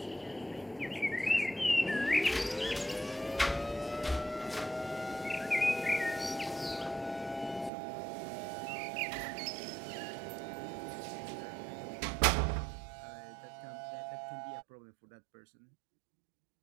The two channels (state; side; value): drops out; left; at 7.7 s